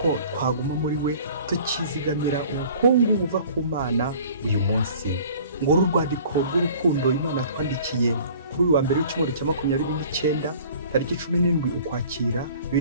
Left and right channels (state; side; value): inverted; both; correlation -0.48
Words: twaguma muri we tukizigamira ubukungu buva ku Mana uyu munsi. Ngo urwandiko rw'urukundo Imana twandikiye kuri uyu wa mbere w'icyumweru cya 29 tariki 17 ukwakira